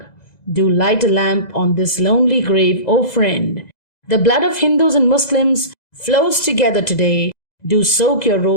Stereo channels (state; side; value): late; right; 2.0 ms